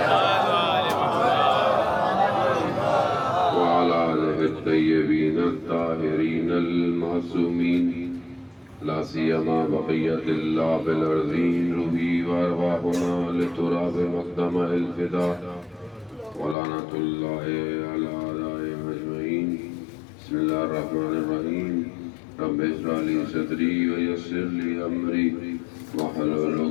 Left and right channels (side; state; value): right; drops out; at 16.6 s